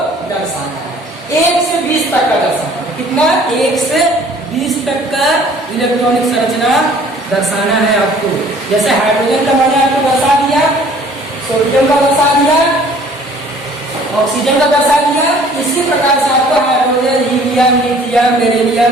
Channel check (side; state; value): both; normal; correlation 0.54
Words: दर्शाना है। 1 से 20 तक का दर्शाना है। कितना? 1 से 20 तक का इलेक्ट्रॉनिक संरचना दर्शाना है आपको। जैसे हाइड्रोजन का मैंने आपको दर्शा दिया, सोडियम का दर्शा दिया, ऑक्सीजन का दर्शा दिया। इसी प्रकार से आपको hydrogen, helium, lithium,